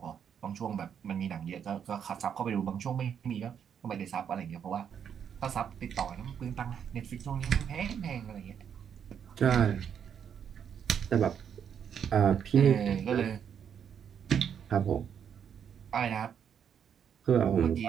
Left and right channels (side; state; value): left; quieter; 8.1 dB